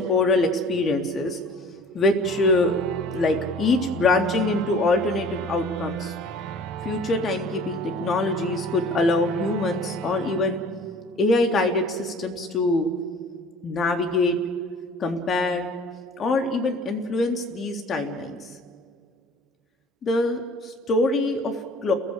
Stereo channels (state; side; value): normal; both; correlation 0.47